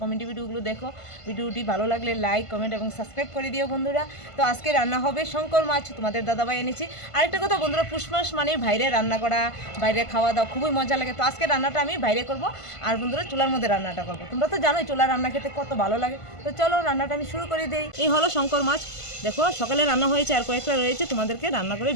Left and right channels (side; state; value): right; late; 1.5 ms